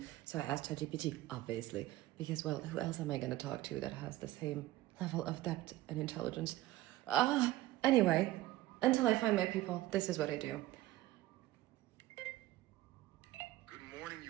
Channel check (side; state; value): left; quieter; 16.3 dB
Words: So I asked ChatGPT, obviously, because, well, who else am I going to talk to that has the same level of depth and intelligence? Anyway, until I find my people, this is what I do. Good morning,